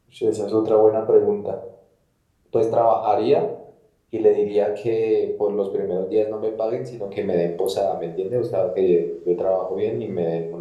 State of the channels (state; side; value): identical; both; correlation 1.00